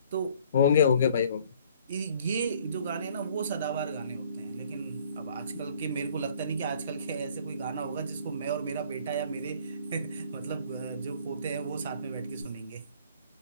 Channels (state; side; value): inverted; both; correlation -0.57